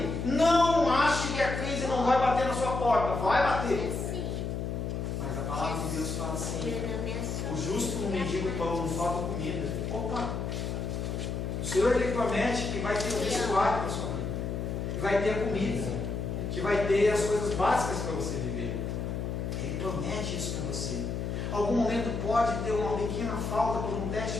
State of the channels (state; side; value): noise; left; hum, 3 dB below the sound